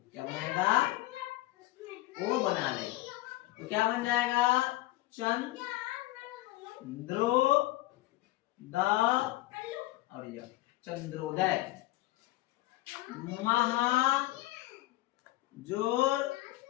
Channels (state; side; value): quieter; right; 17.6 dB